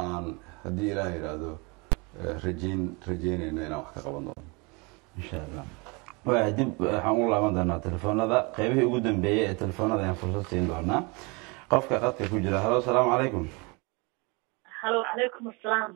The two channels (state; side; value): quieter; left; 28.8 dB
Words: aan haddii ilaah yidhaahdo rajeynayno inaan wax ka qaban doono insha allah waa dib waxaan u laaban doonaa telefoonada qaybihii ugu dambeeyey ee telefoonada ayaan fursad siin doonaa qofka qadka ku jira halo asalaamu calaykum halo calaykum asalaam